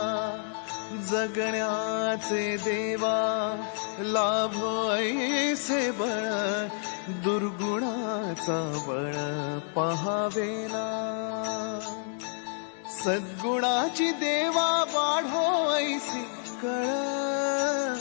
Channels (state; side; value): silent; right; digital silence